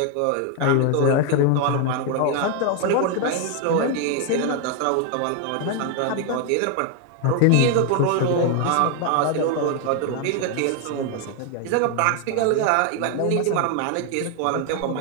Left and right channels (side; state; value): both; different; correlation 0.01